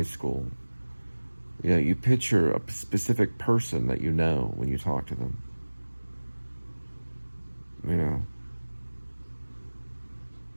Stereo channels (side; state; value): both; inverted; correlation -1.00